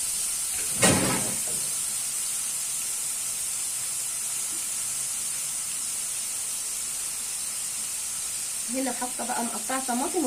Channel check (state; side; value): identical; both; correlation 1.00